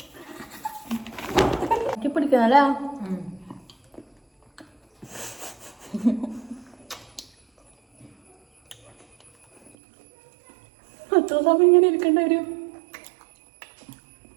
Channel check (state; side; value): drops out; left; at 9.7 s